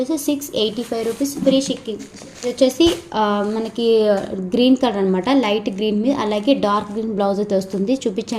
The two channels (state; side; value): identical; both; correlation 1.00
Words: 685 రూపీస్ ఫ్రీ షిప్పింగ్. వచ్చేసి మనకి గ్రీన్ కలర్ అనమాట, లైట్ గ్రీన్ మీద అలాగే డార్క్ గ్రీన్ బ్లౌజ్ అయితే వస్తుంది.